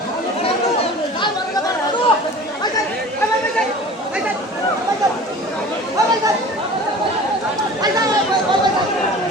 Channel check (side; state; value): both; normal; correlation 0.41